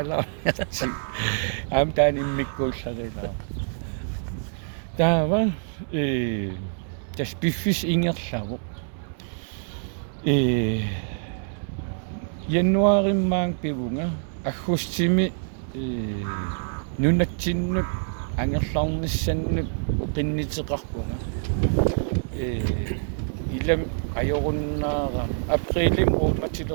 аам таан иммиккуулларилаа таава тас пиффис ингерлаву януариммаан пивунга аггустими нунатсиннут ангерлаарниссаннут qinнитеқарпунга илам ajorunnaara априлим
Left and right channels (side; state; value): left; silent; digital silence